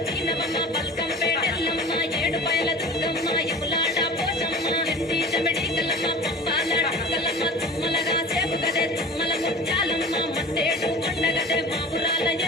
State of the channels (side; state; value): both; normal; correlation 0.38